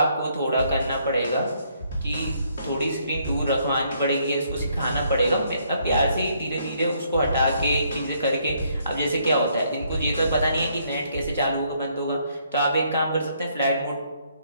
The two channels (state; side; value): inverted; both; correlation -0.70